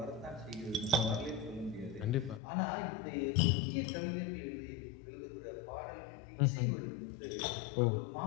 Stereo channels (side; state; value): right; drops out; at 2.4 s